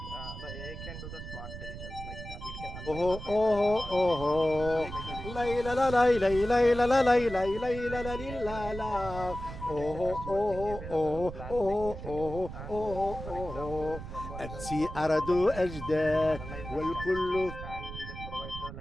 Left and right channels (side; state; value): right; noise; rumble, 10 dB below the sound